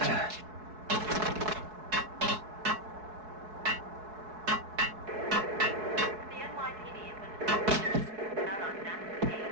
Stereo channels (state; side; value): late; left; 4.7 ms